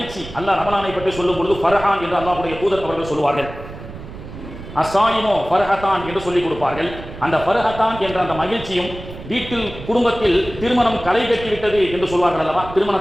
அல்லாஹ் ரமலானை பற்றி சொல்லும் பொழுது ஃபர்ஹான் என்று அல்லாஹ்வுடைய தூதர் அவர்கள் சொல்வார்கள். அசாயினோ ஃபர்ஹத்தான் என்று சொல்லிக் கொடுப்பார்கள். அந்த ஃபர்ஹத்தான் என்ற அந்த மகிழ்ச்சியும் வீட்டில் குடும்பத்தில் திருமணம் களை கட்டிவிட்டது என்று சொல்வார்கள் அல்லவா,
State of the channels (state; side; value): noise; right; rumble, 13 dB below the sound